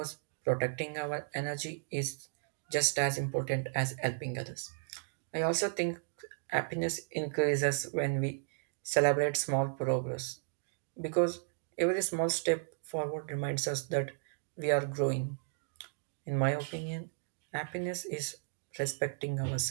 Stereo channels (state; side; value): silent; left; digital silence